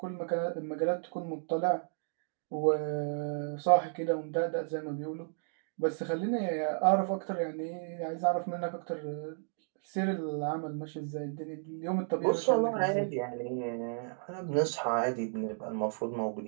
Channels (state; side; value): silent; left; digital silence